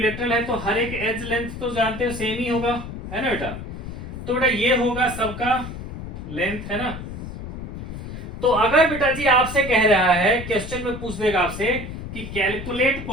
है तो हर एक एज लेंथ तो जानते हो सेम ही होगा, है ना बेटा। तो बेटा ये होगा सबका लेंथ, है ना। तो अगर बेटा जी आपसे कह रहा है, क्वेश्चन में पूछ देगा आपसे कि calculate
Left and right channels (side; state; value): left; noise; rumble, 9 dB below the sound